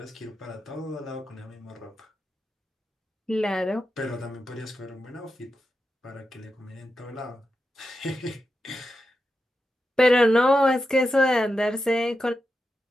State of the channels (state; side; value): normal; both; correlation 0.89